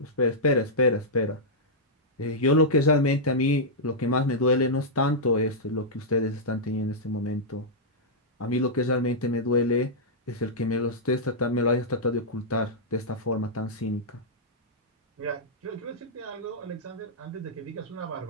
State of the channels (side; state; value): both; normal; correlation -0.09